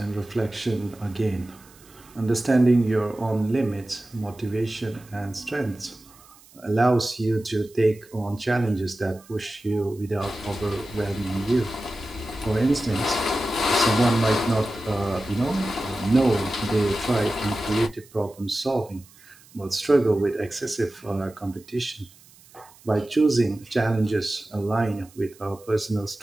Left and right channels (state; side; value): noise; right; hiss, 25 dB below the sound